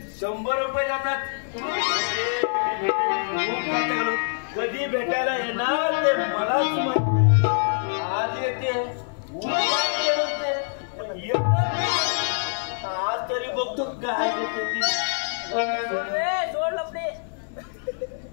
100 रुपये जातात. कधी भेटायला येणार ते मलाच माहिती. आज येते आज तरी बघतो काय देते ती. सोड लपडे.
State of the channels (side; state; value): right; silent; 62 dB below the other